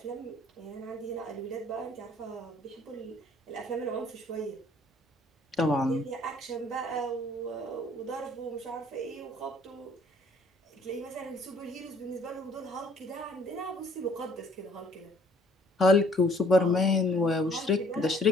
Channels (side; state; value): both; normal; correlation 0.58